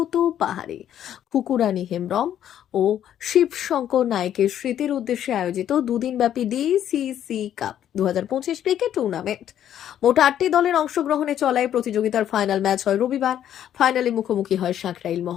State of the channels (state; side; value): quieter; right; 10.6 dB